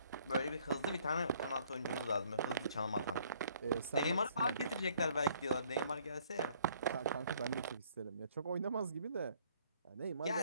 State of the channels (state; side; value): inverted; both; correlation -0.62